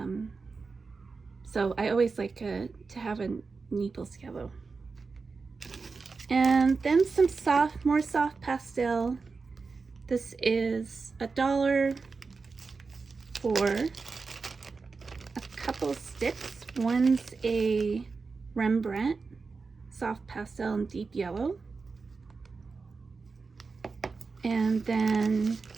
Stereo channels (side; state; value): left; quieter; 4.5 dB